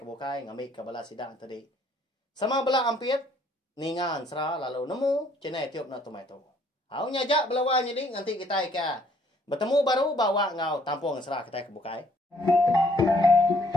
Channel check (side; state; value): both; normal; correlation 0.64